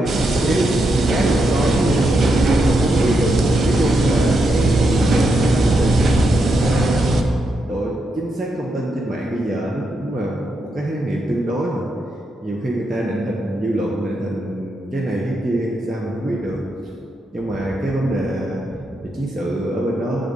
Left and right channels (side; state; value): both; normal; correlation 0.83